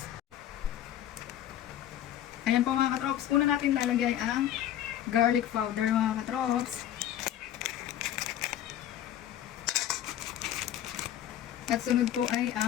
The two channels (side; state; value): right; quieter; 11.6 dB